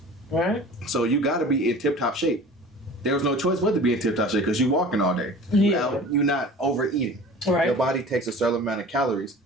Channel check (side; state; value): both; normal; correlation 0.41